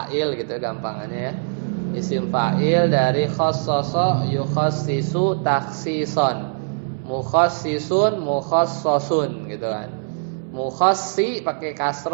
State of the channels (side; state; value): left; silent; 64 dB below the other